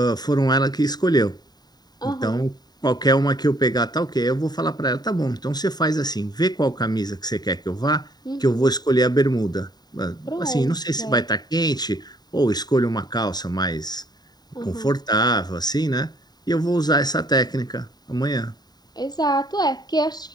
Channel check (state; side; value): late; right; 0.20 ms